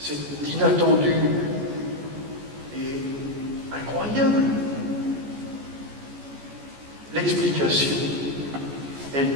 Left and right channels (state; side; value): late; left; 14 ms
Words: inattendu et incroyable. L'explication,